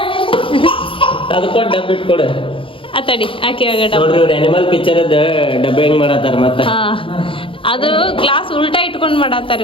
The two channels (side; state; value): right; late; 0.25 ms